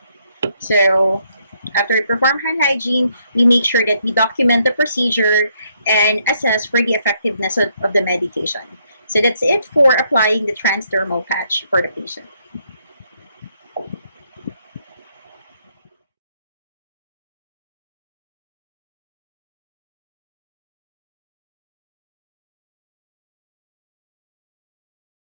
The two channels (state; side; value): inverted; both; correlation -0.73